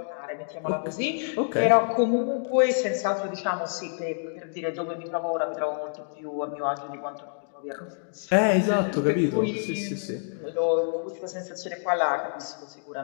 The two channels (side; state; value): right; silent; digital silence